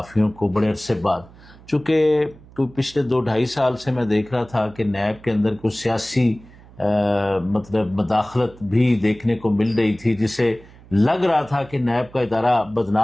کو بڑے عرصے بعد، چونکہ پچھلے 2-2.5 سال سے میں دیکھ رہا تھا کہ نیب کے اندر کچھ سیاسی مطلب مداخلت بھی دیکھنے کو مل رہی تھی، جسے لگ رہا تھا کہ نیب کا ادارہ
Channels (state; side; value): noise; right; hum, 23 dB below the sound